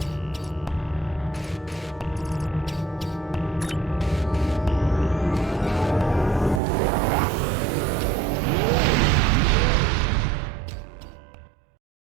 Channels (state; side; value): drops out; left; at 6.6 s